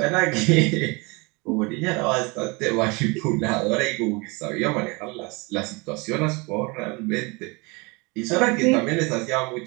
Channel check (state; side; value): quieter; left; 27.5 dB